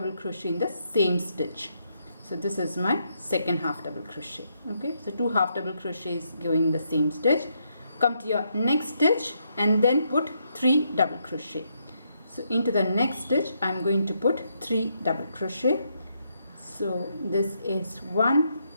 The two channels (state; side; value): inverted; both; correlation -0.77